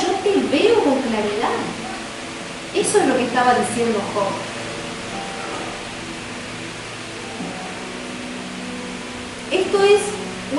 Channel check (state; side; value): identical; both; correlation 1.00